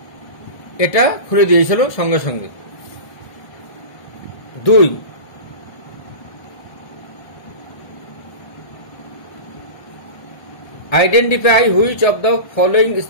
এটা খুলে দিয়েছিল সঙ্গে সঙ্গে। 2, identify which of the following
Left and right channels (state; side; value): late; right; 1.7 ms